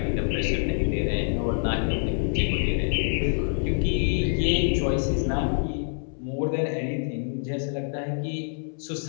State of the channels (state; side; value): silent; right; 61 dB below the other